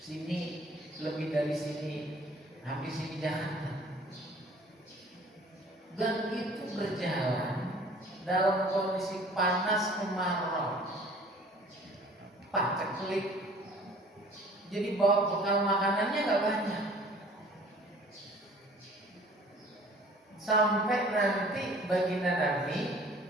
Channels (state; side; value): normal; both; correlation 0.51